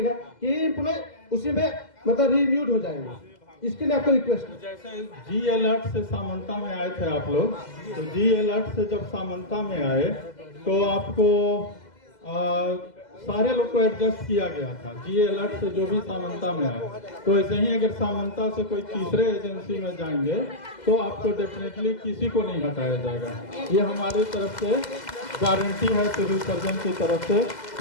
कि ये एम्प्लॉय उसी में मतलब रिन्यूड हो जाएंगे। इसके लिए आपको रिक्वेस्ट है। जैसे जी अलर्ट से सामंता में आए थे आप लोग, तो जी अलर्ट से जब सामंता में आए तो आपको सारे लोग को एडजस्ट किया गया था। जी अलर्ट से जो भी सामंता में आए, तो ऐसे ही अगर सामंता से कोई तीसरे एजेंसी में जाएंगे तो आपको डेफिनेटली किसी को नहीं हटाया जाएगा। ये हमारी तरफ से गारंटी है, सिविल सर्जन की तरफ से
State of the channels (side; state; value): right; late; 2.0 ms